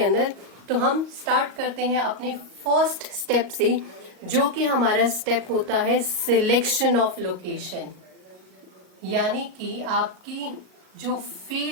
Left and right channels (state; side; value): late; left; 38 ms